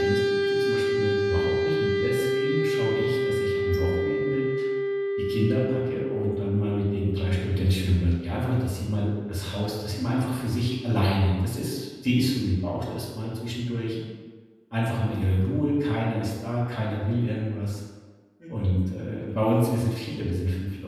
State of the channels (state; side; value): identical; both; correlation 1.00